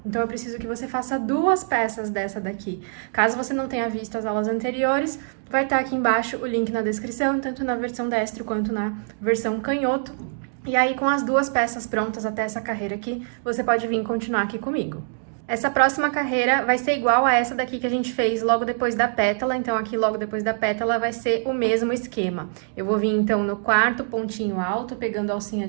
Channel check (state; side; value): silent; left; digital silence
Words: Então eu preciso que você faça 2 peças dessa daqui. Caso você não tenha visto as aulas anteriores, vai estar aqui embaixo o link na descrição, tanto na versão destro quanto na versão canhoto. E aí com as 2 peças prontas até essa carreira aqui, você pode vir continuar aqui comigo. Essa próxima carreira vai ser igual a essa daqui que a gente fez logo depois da pétala, então aqui logo depois da pétala vai ser o mesmo esquema. Eu vou vir então no 4º pontinho alto, pegando a alcinha